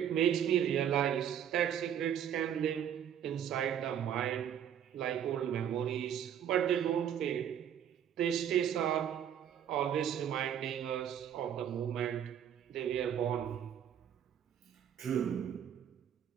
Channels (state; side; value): quieter; left; 9.4 dB